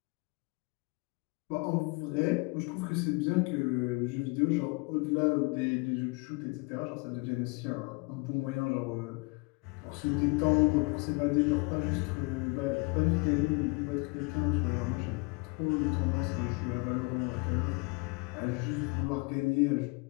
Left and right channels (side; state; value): right; quieter; 30.1 dB